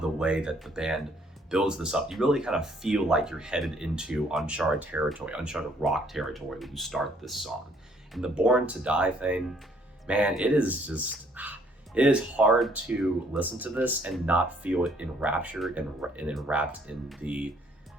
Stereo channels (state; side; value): normal; both; correlation 0.64